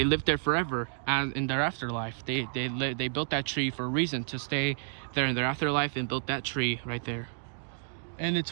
lived there forever, and in their afterlife they built that tree for a reason, to stay there in their afterlife, and built that tree right there. And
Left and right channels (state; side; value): silent; left; digital silence